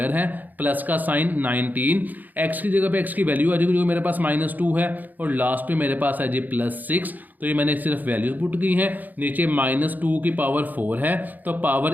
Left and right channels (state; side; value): late; left; 0.084 ms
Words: है, प्लस का साइन 19, x की जगह पे x की वैल्यू आ जाएगी जो कि मेरे पास -2 है, और लास्ट पे मेरे पास है जी +6। तो ये मैंने सिर्फ वैल्यूज पुट की हैं, नीचे -2 की पावर 4 है तो